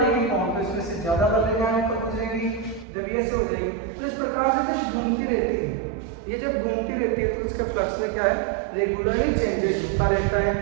लेगी कौन, तो इसमें से ज्यादा बल रेखा होकर गुजरेगी, जब ये ऐसे हो जाएगी, तो इस प्रकार से घूमती रहती है। ये जब घूमती रहती है तो इसके फ्लक्स में क्या है, रेगुलरली चेंजेस होता रहता है,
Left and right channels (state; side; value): drops out; left; at 2.9 s